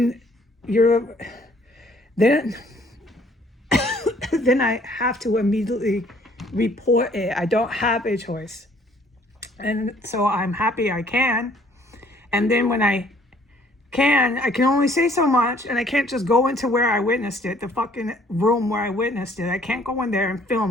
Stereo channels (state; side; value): normal; both; correlation 0.60